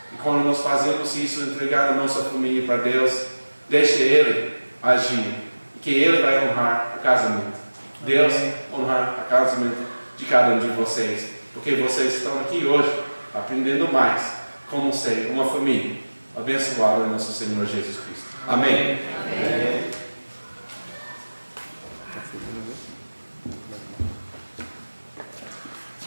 E quando nós fazemos isso, entregar a nossa família para Deus, deixe Ele agir, que Ele vai honrar o casamento. Deus honrar o casamento de cada um de vocês, porque vocês estão aqui hoje aprendendo mais como ser uma família abençoada em nosso Senhor Jesus Cristo. Amém. Amém.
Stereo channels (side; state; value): both; inverted; correlation -1.00